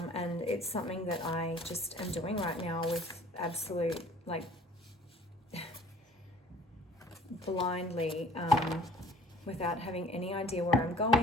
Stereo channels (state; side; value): normal; both; correlation 0.52